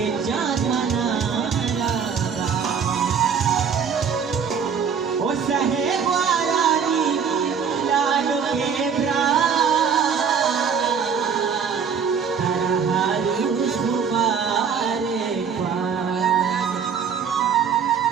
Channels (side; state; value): left; quieter; 6.8 dB